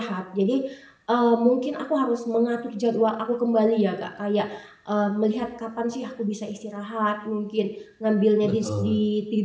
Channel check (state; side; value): identical; both; correlation 1.00